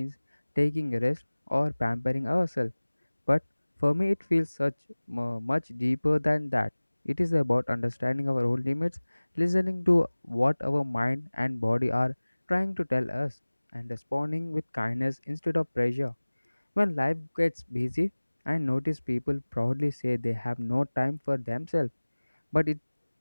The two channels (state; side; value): inverted; both; correlation -1.00